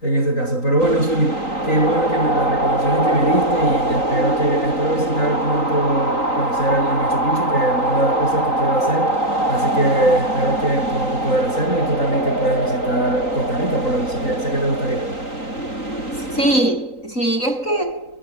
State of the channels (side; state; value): right; late; 3.9 ms